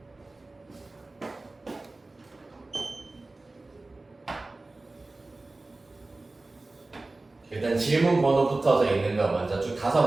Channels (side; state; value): left; quieter; 3.1 dB